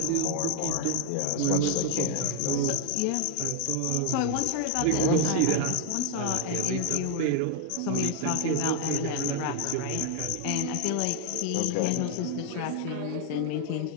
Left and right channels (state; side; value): different; both; correlation 0.00